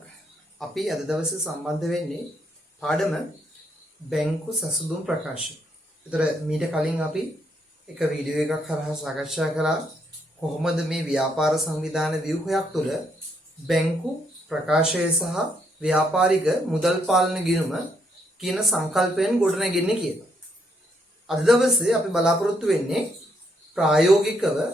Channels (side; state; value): both; normal; correlation 0.74